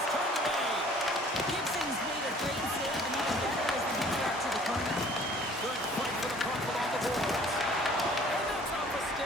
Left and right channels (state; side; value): normal; both; correlation 0.53